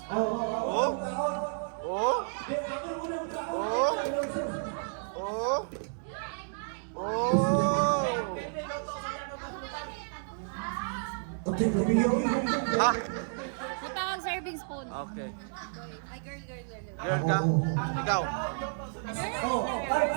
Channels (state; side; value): silent; left; digital silence